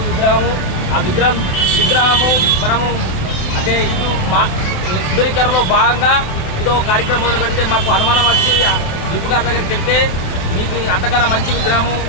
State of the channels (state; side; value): late; right; 28 ms